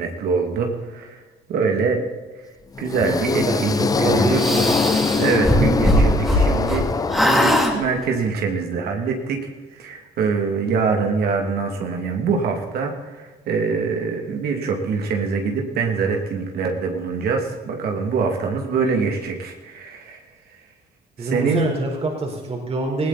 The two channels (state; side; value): normal; both; correlation 0.56